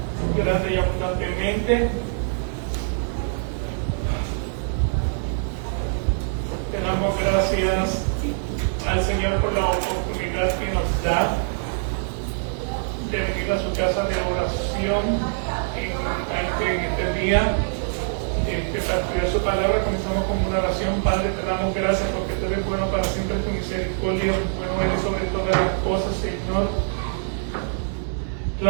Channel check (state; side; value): silent; left; 63 dB below the other